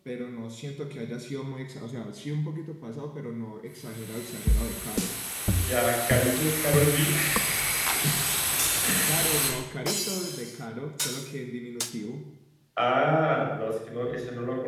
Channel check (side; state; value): both; identical; correlation 1.00